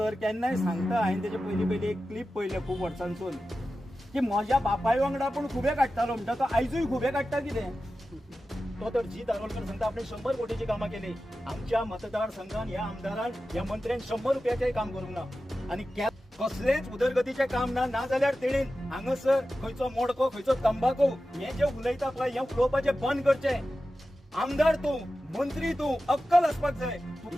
केन्नाय सांगता, हांवें तेजे पयलीं एक क्लिप पळयलें खूब वर्सांसून, की म्हज्या बापाय वांगडा पूण खुबे काडटालो म्हणटा तो आयजूय खुबे काडटा कितें. तो तर जी दारोलकर सांगता आपण 100 कोटीची कामां केली. आमच्या मतदारसंघात ह्या आमदारान ह्या मंत्र्यान 100 रुपयाचेय काम करूंक ना. आणि कसलेच उदरगतीचे काम ना जाल्यार तेणेन हांगासर खंयचो मोडको खंयचो तंबाखू हे जे उलयता पळय हे उलोवपाचे बंद करचे. आमदार तूं, मंत्री तूं, अक्कल आसपाक जाय.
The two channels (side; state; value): both; normal; correlation 0.93